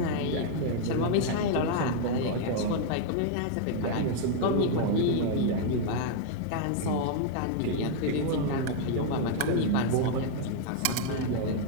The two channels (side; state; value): both; different; correlation -0.01